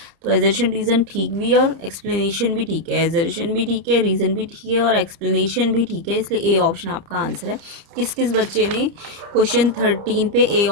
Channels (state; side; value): late; left; 30 ms